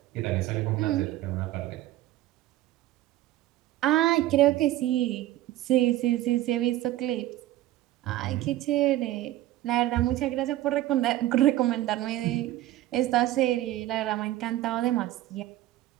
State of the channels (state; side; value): quieter; left; 14.7 dB